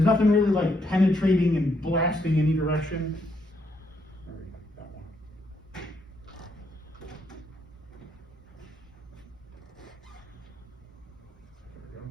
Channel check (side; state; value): both; normal; correlation 0.75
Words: nothing really like penetrating and blasting any direction. That one.